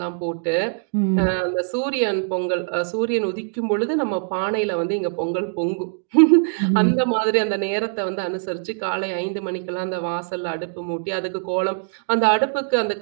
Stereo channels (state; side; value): silent; left; digital silence